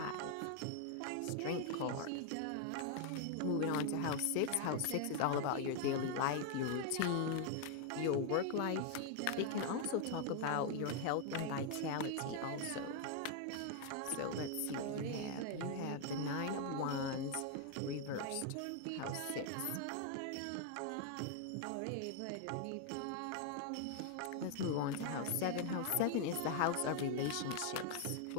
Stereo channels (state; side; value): different; both; correlation 0.00